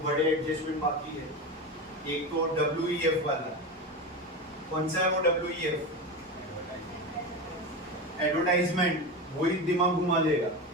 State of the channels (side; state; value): both; normal; correlation 0.22